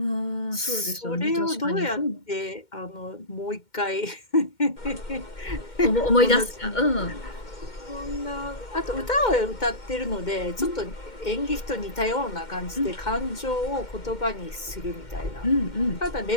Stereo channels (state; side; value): late; right; 2.1 ms